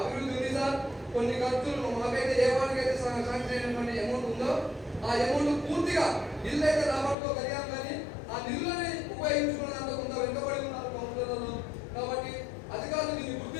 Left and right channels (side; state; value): right; drops out; at 7.2 s